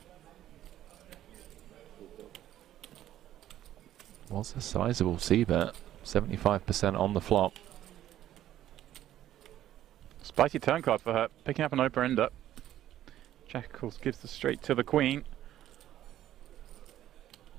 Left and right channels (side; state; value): left; quieter; 12.5 dB